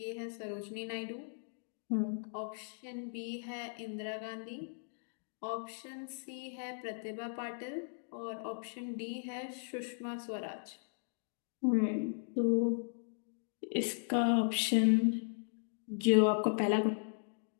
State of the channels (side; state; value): right; silent; digital silence